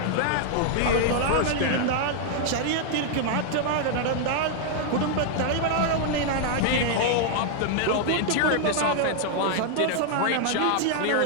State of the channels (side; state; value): both; different; correlation 0.00